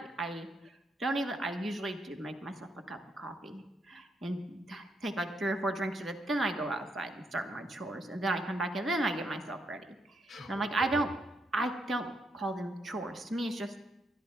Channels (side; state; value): both; normal; correlation 0.77